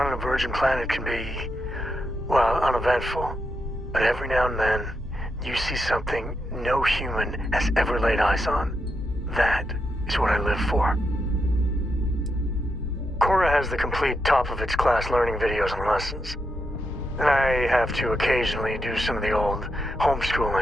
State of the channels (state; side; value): normal; both; correlation 0.83